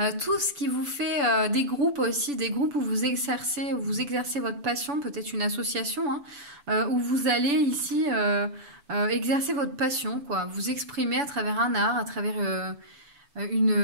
tout ce qui vous fait des groupes aussi, des groupes où vous exercez votre passion, peut-être une association, hein, où vous allez ici exercer votre passion, quoi, vous exprimer à travers un art, à travers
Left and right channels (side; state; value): left; late; 7.0 ms